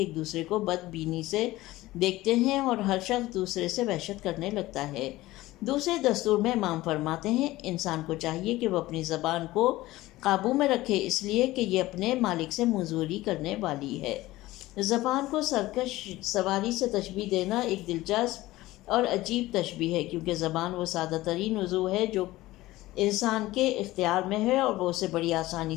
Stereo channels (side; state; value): right; quieter; 17.7 dB